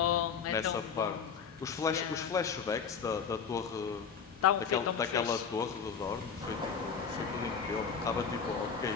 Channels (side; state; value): right; quieter; 6.4 dB